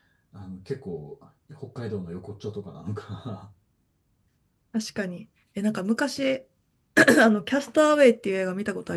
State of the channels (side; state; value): both; identical; correlation 1.00